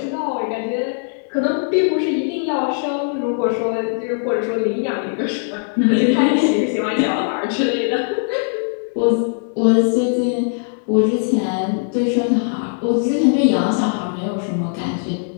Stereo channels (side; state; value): right; silent; 66 dB below the other